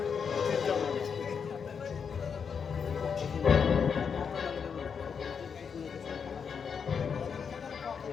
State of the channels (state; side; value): quieter; right; 6.5 dB